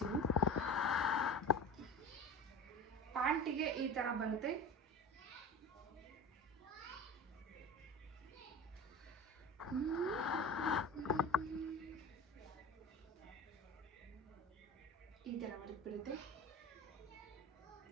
ಪ್ಯಾಂಟಿಗೆ ಈ ಥರ ಬರುತ್ತೆ. ಈ ಥರ ಬರುತ್ತೆ.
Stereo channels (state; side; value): normal; both; correlation 0.32